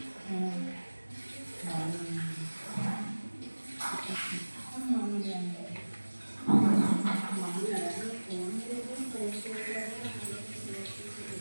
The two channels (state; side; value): inverted; both; correlation -1.00